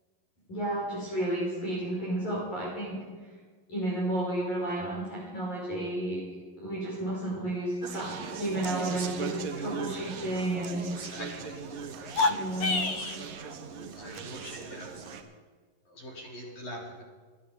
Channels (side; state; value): right; late; 11 ms